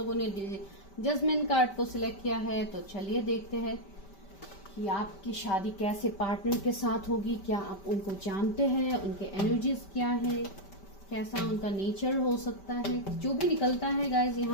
ने जजमेंट कार्ड को सिलेक्ट किया है, तो चलिए देखते हैं कि आपकी शादी कैसे पार्टनर के साथ होगी। क्या आप उनको जानते हैं, उनके एनर्जीज क्या है, कैसा उनका नेचर हो सकता है। जो भी निकलता है गाइज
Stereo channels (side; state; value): right; late; 5.1 ms